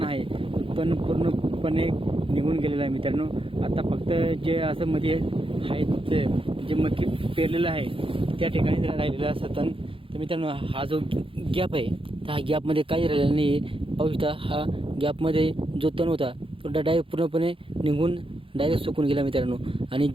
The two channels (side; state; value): left; late; 0.26 ms